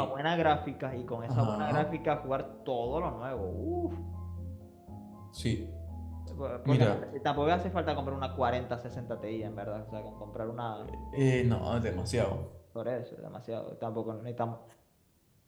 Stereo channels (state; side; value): identical; both; correlation 1.00